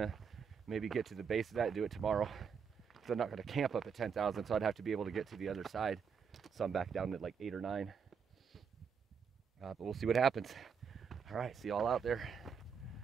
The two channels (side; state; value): left; quieter; 6.5 dB